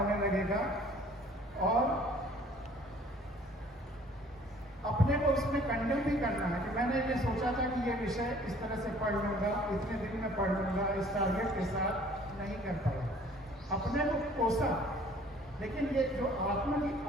लगेगा और अपने को उसमें कंडेम भी करना है कि मैंने ये सोचा था कि ये विषय इस तरह से पढ़ लूंगा, इतने दिन में पढ़ लूंगा, इस टारगेट के साथ नहीं कर पाया, अपने को कोसा। लेकिन ये जो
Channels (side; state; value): both; normal; correlation 0.54